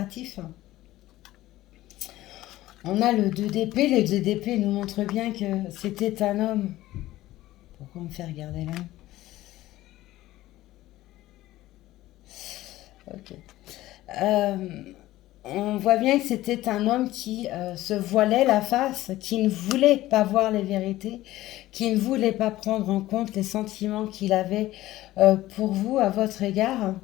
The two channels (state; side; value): quieter; right; 16.0 dB